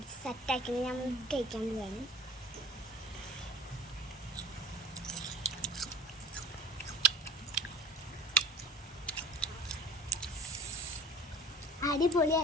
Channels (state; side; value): normal; both; correlation 0.43